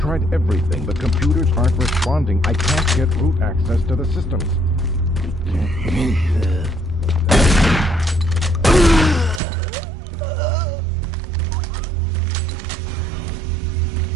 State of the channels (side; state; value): left; drops out; at 9.4 s